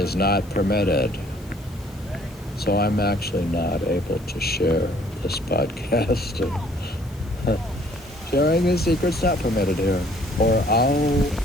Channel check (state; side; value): noise; left; hiss, 27 dB below the sound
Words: not permitted. So I'm actually not able to share this podcast. Sharing this secret's not permitted here. Or